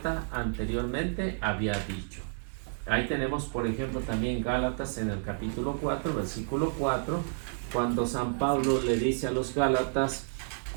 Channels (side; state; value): left; silent; digital silence